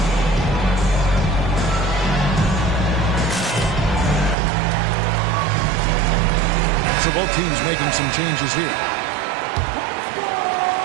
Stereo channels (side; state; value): left; drops out; at 4.4 s